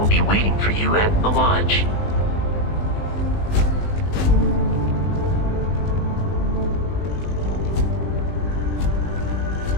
be waiting for you at the lodge.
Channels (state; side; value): late; right; 20 ms